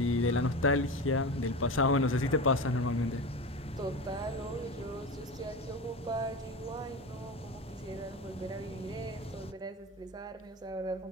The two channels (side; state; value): both; normal; correlation 0.25